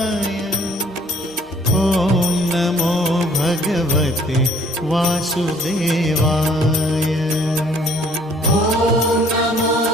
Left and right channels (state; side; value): noise; right; hum, 29 dB below the sound